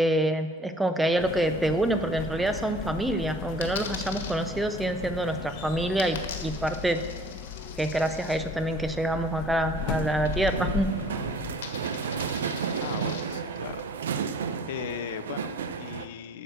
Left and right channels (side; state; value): both; normal; correlation 0.51